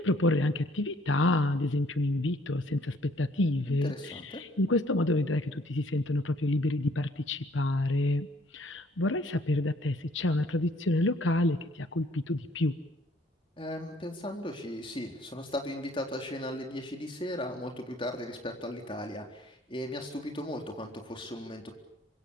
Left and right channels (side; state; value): both; normal; correlation 0.61